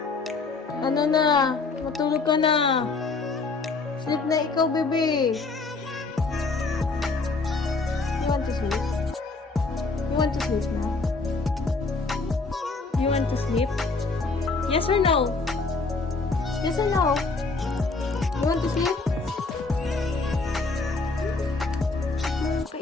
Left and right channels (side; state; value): right; quieter; 3.9 dB